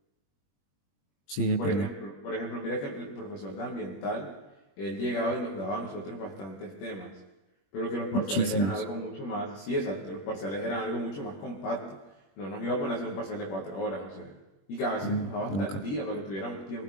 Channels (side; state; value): right; late; 21 ms